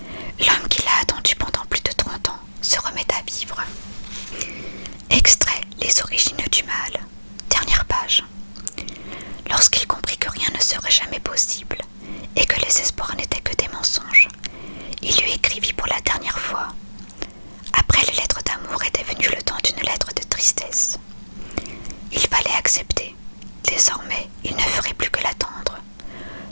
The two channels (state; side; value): inverted; both; correlation -1.00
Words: L'homme qui l'a attendu pendant plus de 30 ans se remet à vivre. Extrait Les origines du mal. Dernière page. Lorsqu'il comprit que rien ne serait jamais possible et que les espoirs n'étaient que des mensonges, il lui écrivit pour la dernière fois. Après les lettres d'amour était venu le temps d'une lettre de tristesse. Il fallait accepter. Désormais, il ne ferait plus que l'attendre.